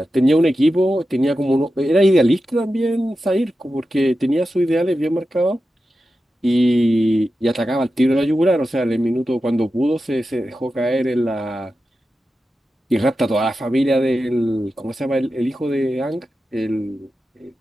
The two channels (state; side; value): normal; both; correlation 0.91